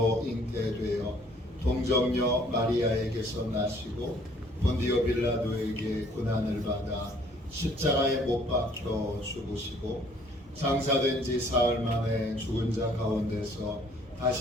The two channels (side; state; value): both; normal; correlation 0.59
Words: 잉태되어 동정녀 마리아에게서 나시고 본디오 빌라도에게 고난을 받아 십자가에 못 박혀 죽으시고 장사된 지 사흘 만에 죽은 자 가운데서